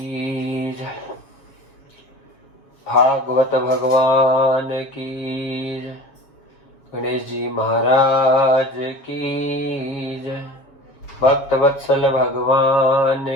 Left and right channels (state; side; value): late; right; 7.2 ms